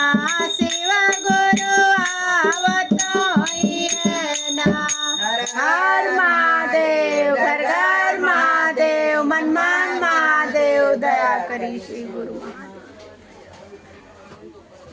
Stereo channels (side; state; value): both; identical; correlation 1.00